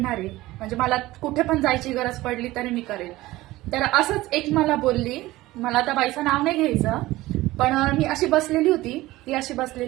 आहे. म्हणजे मला कुठे पण जायची गरज पडली तरी मी करेल. तर असंच एक मला बोलली, मला त्या बाईचं नाव नाही घ्यायचं, पण मी अशी बसलेली होती, ती अशी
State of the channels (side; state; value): left; quieter; 18.0 dB